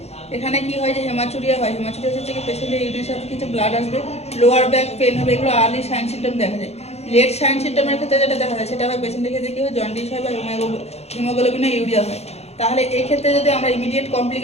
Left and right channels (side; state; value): right; late; 0.31 ms